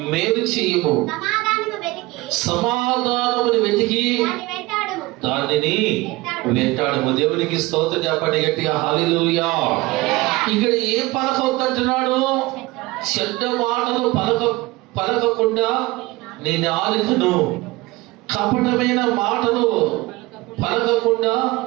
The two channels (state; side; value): quieter; left; 21.0 dB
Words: మేలు చేయము. సమాధానమును వెతికి దానిని వెంటాడము. దేవునికి స్తోత్రం చెప్పండి గట్టిగా హల్లెలూయా. ఇక్కడ ఏం పలకవద్దంటున్నాడు? చెడ్డ మాటలు పలకకుండా నీ నాలుకను, కపటమైన మాటలు పలకకుండా